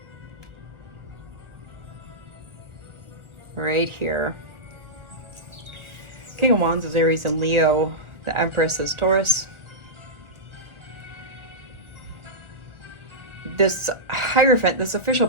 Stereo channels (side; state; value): left; late; 1.4 ms